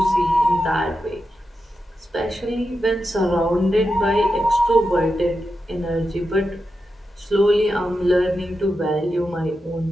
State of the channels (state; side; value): normal; both; correlation 0.89